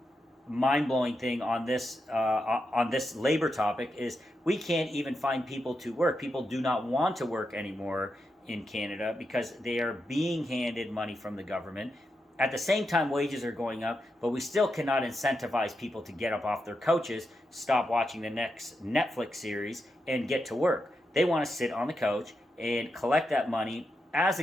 mind-blowing thing on this labor topic is we can't even find people to work. People do not want to work anymore in Canada because they are being handed money from the government. At the same time, wages are going up, but we still cannot incentivize people to get up off their couches, stop watching the next Netflix series, and get to work. They want to sit on the couch and collect that money as the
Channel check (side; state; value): both; normal; correlation 0.86